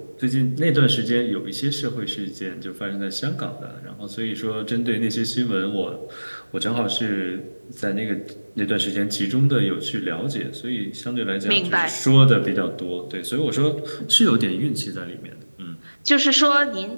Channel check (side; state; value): both; inverted; correlation -1.00